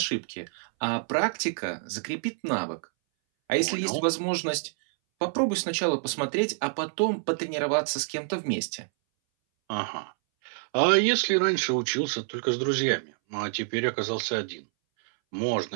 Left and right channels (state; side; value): silent; left; 60 dB below the other